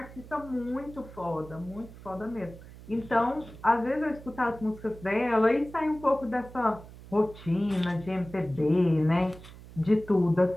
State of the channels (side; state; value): right; noise; hum, 18 dB below the sound